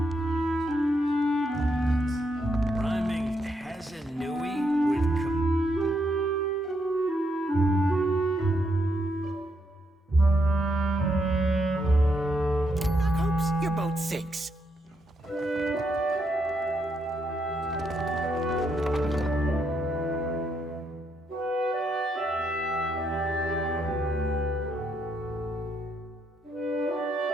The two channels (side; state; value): both; normal; correlation 0.77